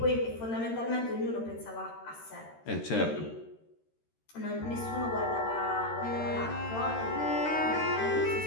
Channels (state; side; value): late; right; 13 ms